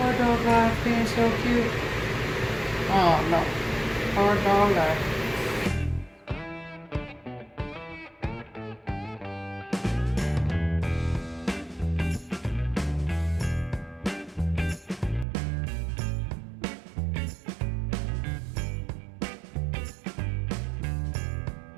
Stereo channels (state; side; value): drops out; left; at 15.2 s